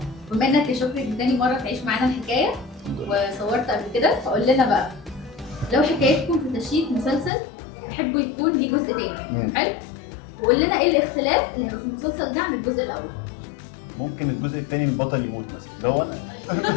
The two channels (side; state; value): right; drops out; at 7.3 s